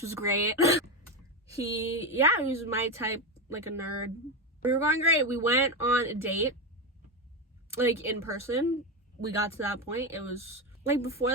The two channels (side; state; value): both; normal; correlation 0.13